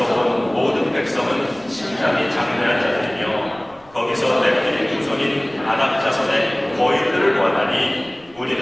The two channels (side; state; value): left; noise; rumble, 29 dB below the sound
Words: 온 모든 백성은 심장이 장대한 자들이며 거기서 넷들이 후손인 아낙 자손의 거인들을 원하니